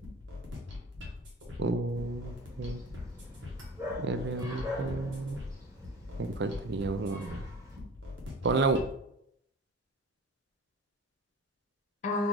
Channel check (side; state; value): both; normal; correlation 0.38